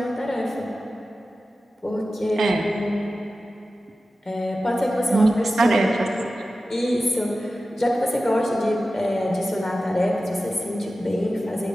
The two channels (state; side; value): normal; both; correlation 0.94